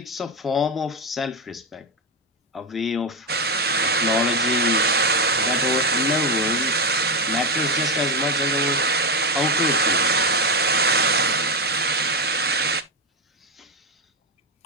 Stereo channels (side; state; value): both; normal; correlation 0.10